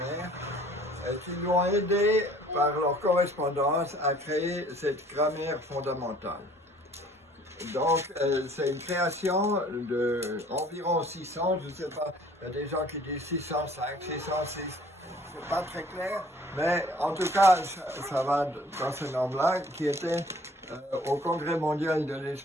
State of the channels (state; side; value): normal; both; correlation 0.54